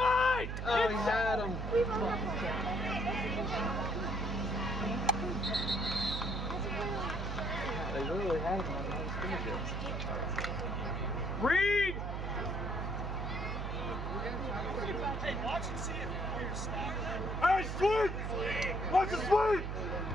Oh, he had him. They literally had him on those scrimmages. Read! Hey, watch and see if you're snapping. Hey, sweep! Watch the sweep!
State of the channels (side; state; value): right; noise; hum, 3 dB below the sound